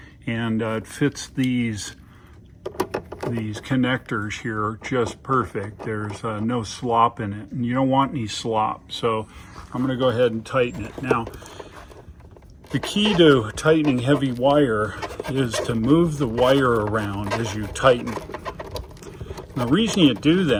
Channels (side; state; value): both; identical; correlation 1.00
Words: and it fits these connectors here just perfect. There's no slop in it, and you don't want any slop, so I'm going to go ahead and tighten it. Now, the key to tightening heavy wire is to move the wire around as you tighten it. The reason you do